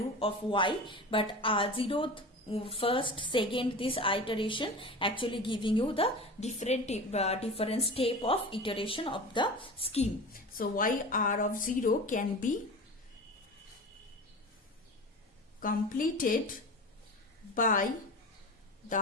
of y, but 0th, first, second, this iteration actually giving you the different step of iteration of the scheme. So y r of 0 can be completed by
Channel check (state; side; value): normal; both; correlation 0.33